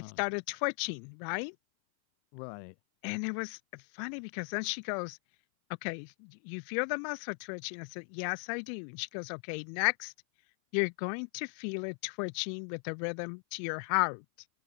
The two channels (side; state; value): right; silent; 53 dB below the other